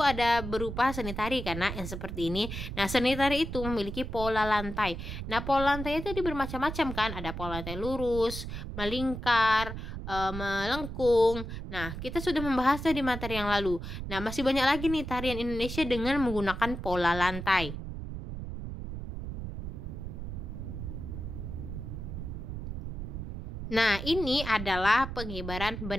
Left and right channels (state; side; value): noise; right; rumble, 7 dB below the sound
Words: berupa seni tari karena yang seperti ini. Nah, seni tari itu memiliki pola lantai. Nah, pola lantai itu bermacam-macam kan. Ada pola lantai lurus, melingkar, melengkung. Nah, kita sudah membahasnya di materi yang lalu. Nah, masih banyak lagi nih tarian Indonesia dengan menggunakan pola lantai. Nah, ini adalah pengibaran